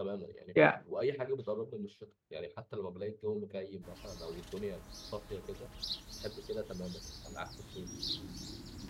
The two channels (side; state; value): both; identical; correlation 1.00